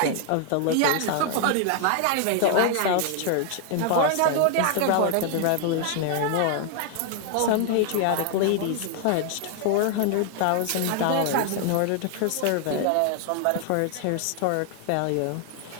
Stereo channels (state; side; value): different; both; correlation 0.00